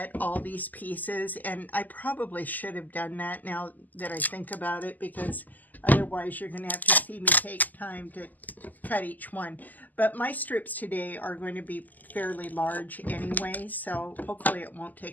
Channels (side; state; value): right; late; 0.083 ms